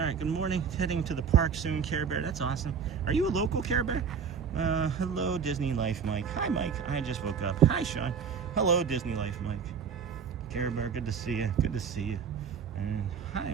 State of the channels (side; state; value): left; quieter; 6.5 dB